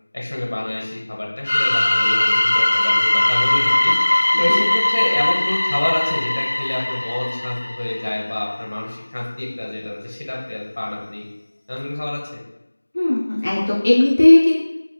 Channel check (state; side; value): inverted; both; correlation -1.00